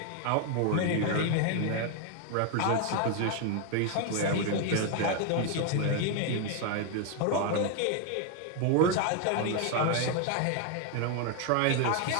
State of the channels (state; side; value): different; both; correlation 0.01